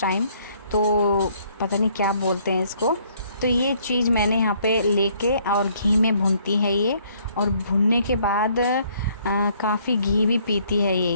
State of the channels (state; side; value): inverted; both; correlation -0.64